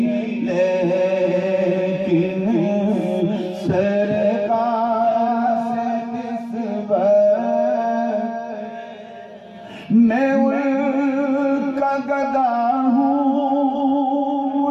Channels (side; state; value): both; identical; correlation 1.00